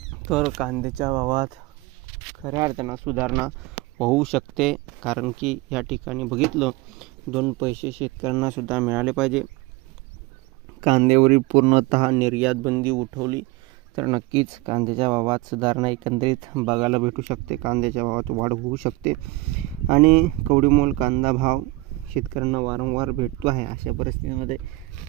तर कांद्याच्या भावात खऱ्या अर्थानं सुधारणा होऊ शकते. कारण की या ठिकाणी बघितलं, दोन पैसे शेतकऱ्यांना सुद्धा मिळाले पाहिजे. कांद्यावरील पूर्णतः निर्यात बंदी उठवली तर नक्कीच कांद्याच्या भावात सुधारणा एकंदरीत बघायला भेटू शकते. कांद्याच्या भावात वाढ होऊ शकते आणि कवडीमोल कांदा भाव शेतकऱ्यांना वारंवार भेटतो आहे. अशा परिस्थितीमध्ये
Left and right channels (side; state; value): left; quieter; 20.8 dB